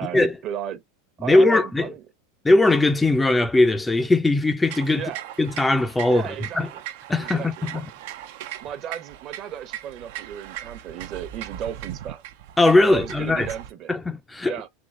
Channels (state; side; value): normal; both; correlation 0.89